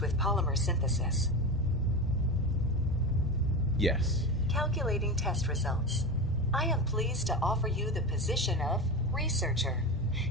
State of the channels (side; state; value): both; normal; correlation 0.23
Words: polymer synthesis? Yes. Calculating test results. I am pleased to offer you the position of researcher.